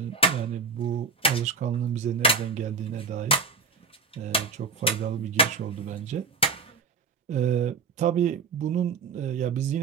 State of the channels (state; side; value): quieter; left; 4.6 dB